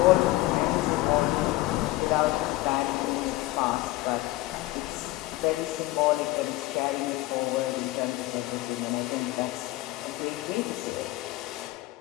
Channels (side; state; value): right; quieter; 18.4 dB